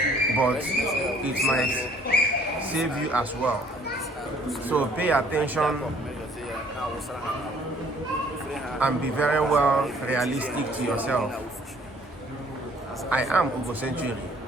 but it might save you as well. So pay attention and be very well realistic to yourself. I am Ugo Century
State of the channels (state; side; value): normal; both; correlation 0.59